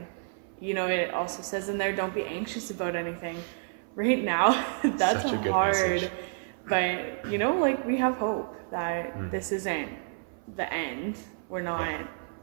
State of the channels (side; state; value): left; silent; 56 dB below the other